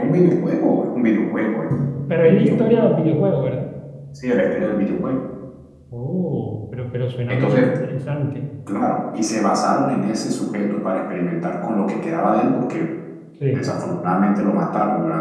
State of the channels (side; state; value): both; identical; correlation 1.00